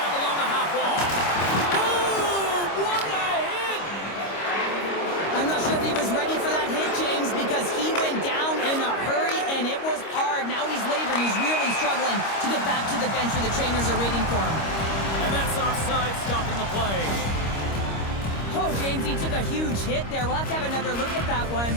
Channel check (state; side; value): late; right; 25 ms